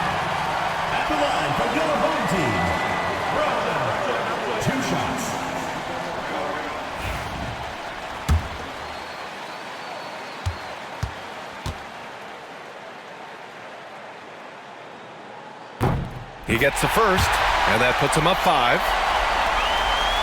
At the line for your home team, Roosevelt. 2 shots. He gets the first, and that puts him up 5.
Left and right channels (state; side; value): identical; both; correlation 1.00